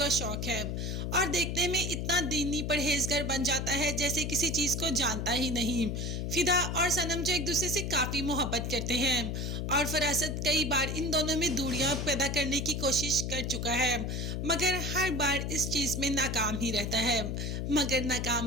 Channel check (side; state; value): left; noise; hum, 2 dB below the sound